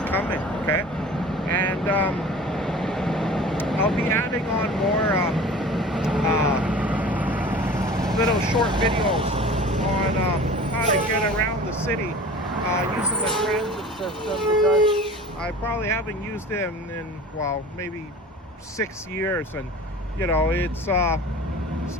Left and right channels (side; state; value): both; normal; correlation 0.40